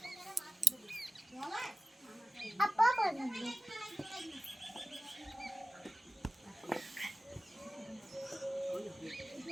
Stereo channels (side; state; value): both; normal; correlation 0.97